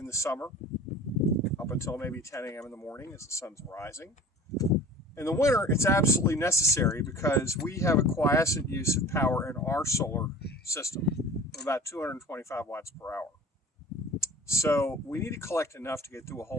the summer up until maybe 10 a.m. in the morning as the sun's rising. In the winter, it's absolutely necessary because we have a quiescent use of power in our solar system of about 225 watts per hour. So we need to collect enough to get through a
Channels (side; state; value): both; normal; correlation 0.41